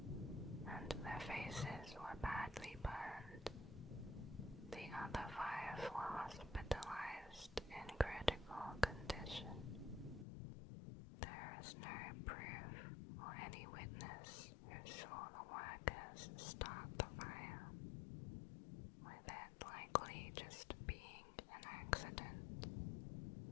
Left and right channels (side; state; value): right; drops out; at 10.2 s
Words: and their faces were badly burned. The other 5 were hospitalized in critical condition. There is no proof or any witness who saw the workers start the fire, with it likely just being an accident.